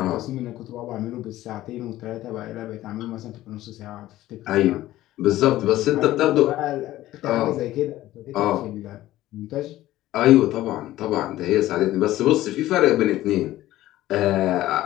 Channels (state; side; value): quieter; right; 15.2 dB